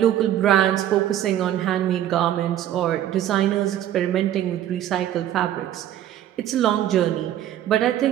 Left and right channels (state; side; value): quieter; left; 11.8 dB